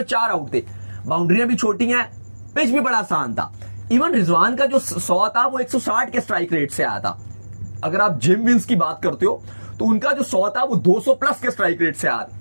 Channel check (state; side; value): inverted; both; correlation -1.00